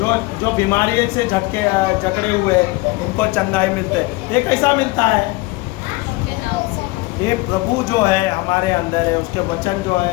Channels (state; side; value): quieter; right; 22.3 dB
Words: जो बीमारी से जकड़े हुए उनको चंगाई मिलते हैं। ये कैसा मिलता है? ये प्रभु जो है हमारे अंदर है, उसके वचन जो